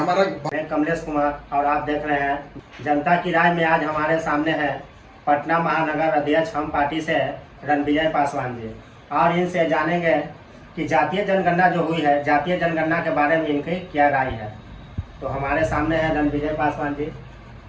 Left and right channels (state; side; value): identical; both; correlation 1.00